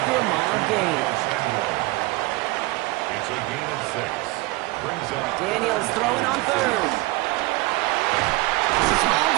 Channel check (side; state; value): left; quieter; 21.4 dB